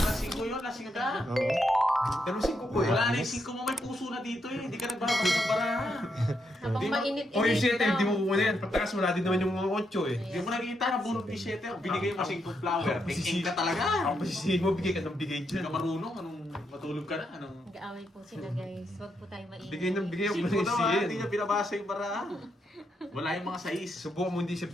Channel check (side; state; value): both; normal; correlation 0.80